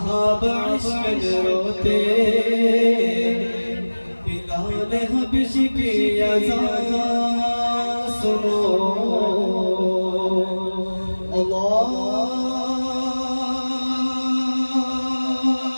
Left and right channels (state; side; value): inverted; both; correlation -1.00